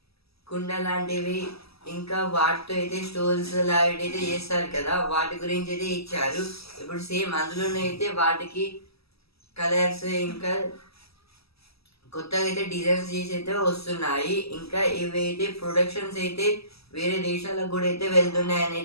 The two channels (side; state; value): right; late; 0.77 ms